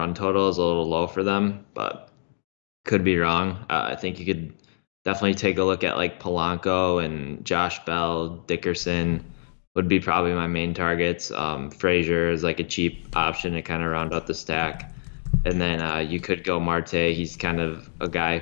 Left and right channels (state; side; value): silent; right; digital silence